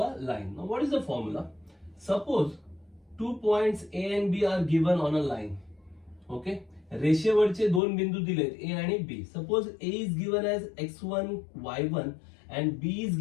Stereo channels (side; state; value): right; drops out; at 7.8 s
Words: a line. Now what is the formula? Suppose 2 points A and B are given on a line. Okay, रेषेवरचे दोन बिंदू दिलेत A आणि B. Suppose A is given as x1 y1 and B is